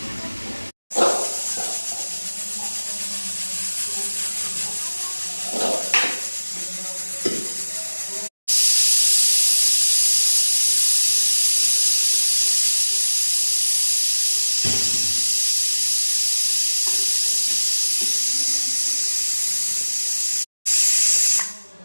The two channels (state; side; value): inverted; both; correlation -1.00